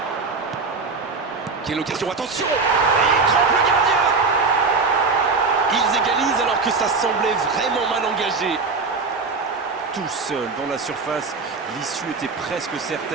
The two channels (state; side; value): quieter; left; 4.3 dB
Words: Quelle occasion, attention! Et il trompe le gardien! Ils égalisent alors que ça semblait vraiment mal engagé. Tout seul dans la surface, l'issue était presque